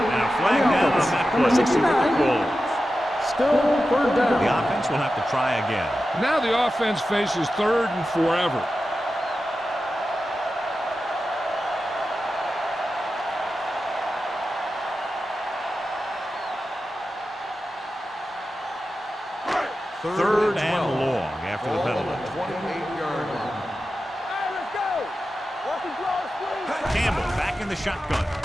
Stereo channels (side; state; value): both; normal; correlation 0.92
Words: a flag down on that play. 69. Still third down. The offense will have to try again. Now the offense faces third and forever. Third and long after the penalty. 28-yard line. Hey, let's go. Watch the draw, squeeze. Campbell back in the shotgun.